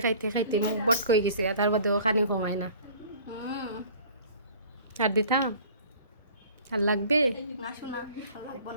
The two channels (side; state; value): both; inverted; correlation -0.48